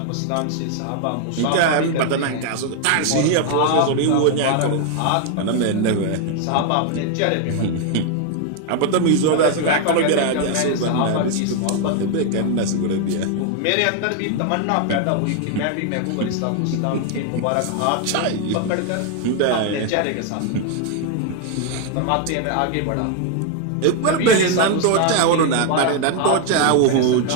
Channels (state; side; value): different; both; correlation 0.00